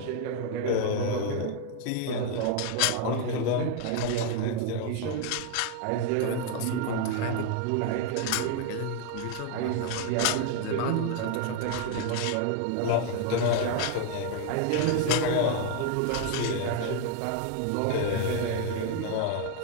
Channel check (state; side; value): different; both; correlation 0.00